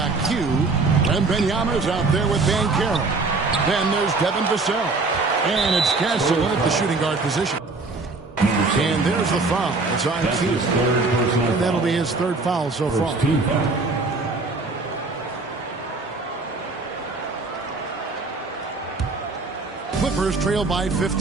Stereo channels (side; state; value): left; quieter; 3.7 dB